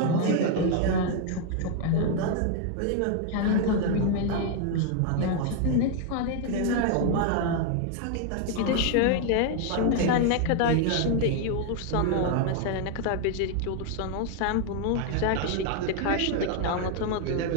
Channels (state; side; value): different; both; correlation 0.00